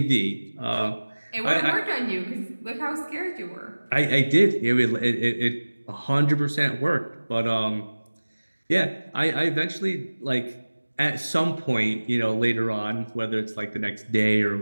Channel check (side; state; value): both; inverted; correlation -1.00